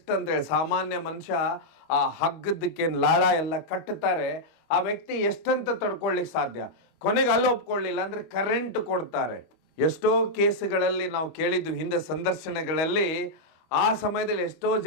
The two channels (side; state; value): right; late; 25 ms